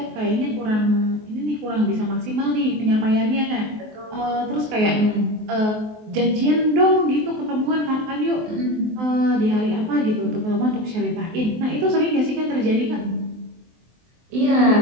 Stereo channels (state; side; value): late; left; 23 ms